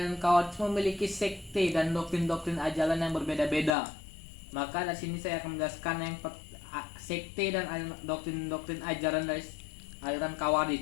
Khawarij memiliki sekte dan doktrin-doktrin ajaran yang berbeda-beda. Maka di sini saya akan menjelaskan yang sekte dan doktrin-doktrin ajaran dari aliran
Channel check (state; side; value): drops out; right; at 3.7 s